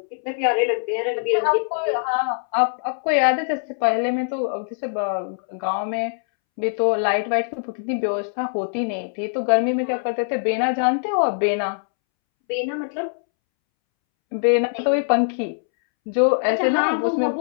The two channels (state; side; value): silent; right; 64 dB below the other